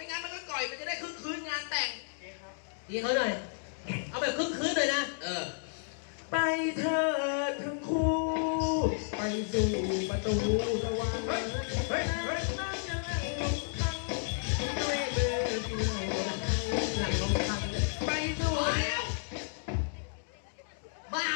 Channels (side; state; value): right; silent; digital silence